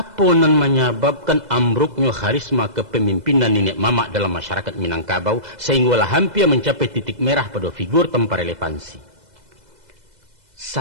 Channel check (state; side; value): late; left; 2.0 ms